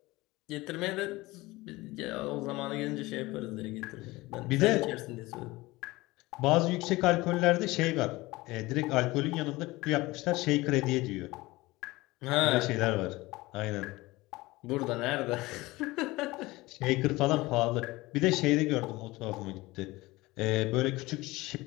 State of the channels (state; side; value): quieter; right; 20.5 dB